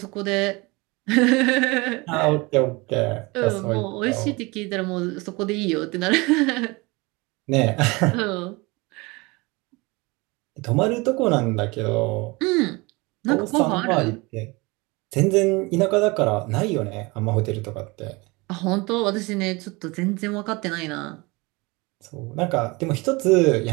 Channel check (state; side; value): quieter; left; 25.0 dB